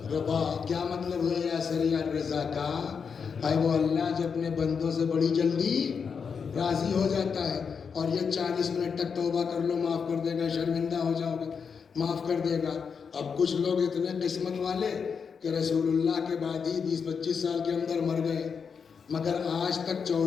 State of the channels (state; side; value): quieter; right; 6.1 dB